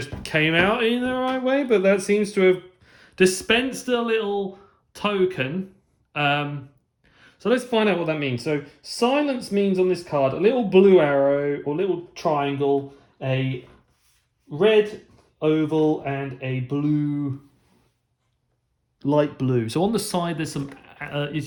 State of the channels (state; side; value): identical; both; correlation 1.00